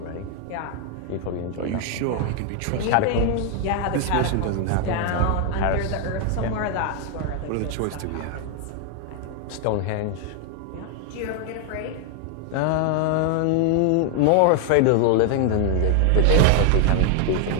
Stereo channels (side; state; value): both; different; correlation 0.00